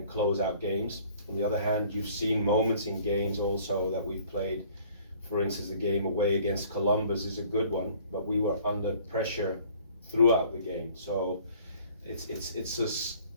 close out games. On the other hand, you've seen moments in games also that we've played. For instance, the game away against Columbus is a good one, but we were under pressure throughout the game. So it's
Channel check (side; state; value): both; inverted; correlation -0.54